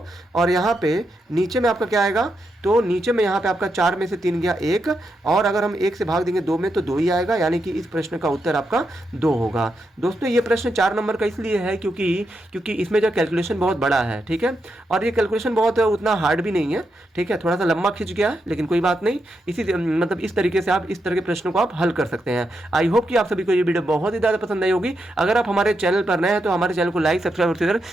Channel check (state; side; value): normal; both; correlation 0.84